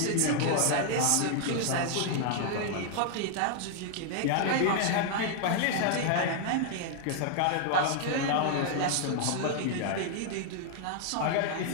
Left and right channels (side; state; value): both; different; correlation 0.00